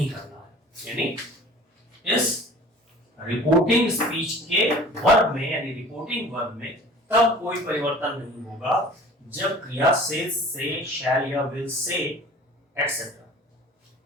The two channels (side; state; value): both; normal; correlation 0.45